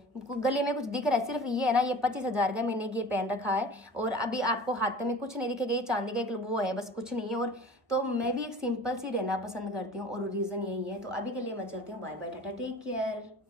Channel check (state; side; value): normal; both; correlation 0.41